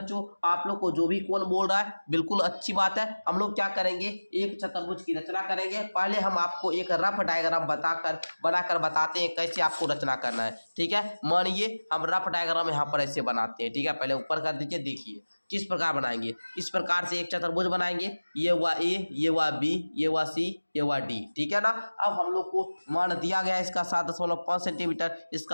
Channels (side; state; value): both; inverted; correlation -1.00